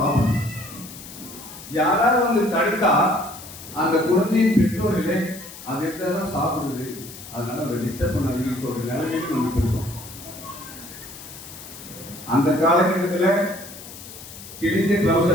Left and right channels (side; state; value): left; noise; hiss, 15 dB below the sound